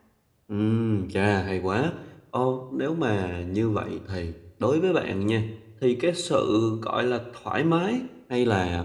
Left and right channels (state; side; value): identical; both; correlation 1.00